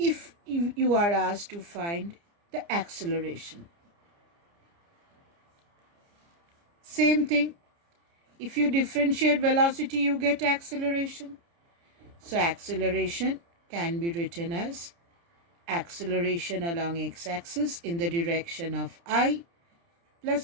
you are asked to find the acceleration, same thing. If you differentiate velocity, you get acceleration. So acceleration can be written as acceleration along x-axis in the direction of I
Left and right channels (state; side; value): late; left; 29 ms